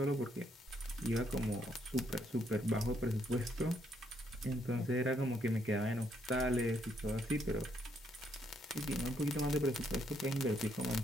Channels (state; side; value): normal; both; correlation 0.73